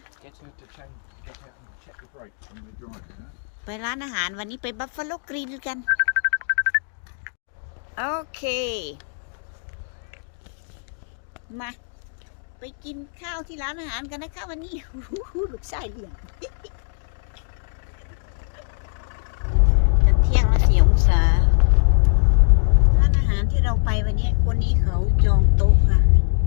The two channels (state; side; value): silent; right; 64 dB below the other